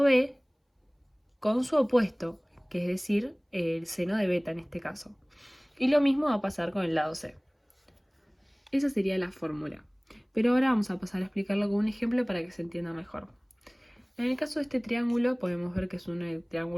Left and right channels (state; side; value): identical; both; correlation 1.00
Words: B con su opuesto, que es decir, el seno de beta en este caso. Y lo mismo va a pasar con el lado C. Esa sería la fórmula. Pero ahora vamos a pasar a explicarlo con un ejemplo para que se entienda mejor. En el caso de este triángulo podemos ver que es un